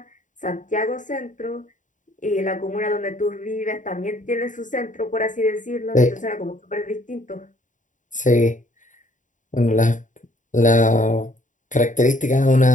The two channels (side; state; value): right; late; 0.37 ms